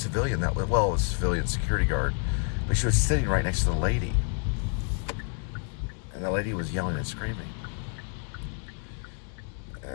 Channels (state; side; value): quieter; right; 38.4 dB